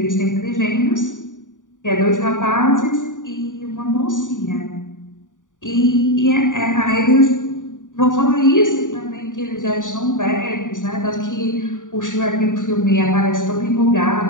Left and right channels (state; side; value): late; right; 0.87 ms